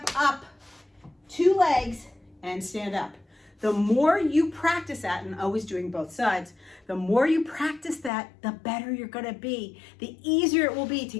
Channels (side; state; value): right; drops out; at 8.1 s